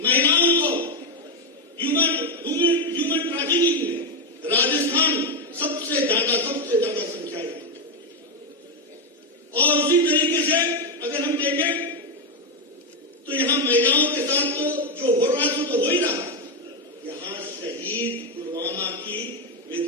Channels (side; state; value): both; normal; correlation 0.06